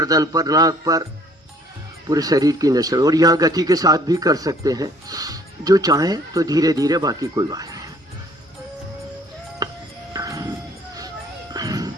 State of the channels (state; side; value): normal; both; correlation 0.57